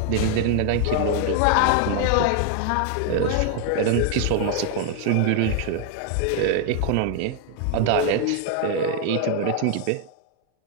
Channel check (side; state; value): both; different; correlation 0.00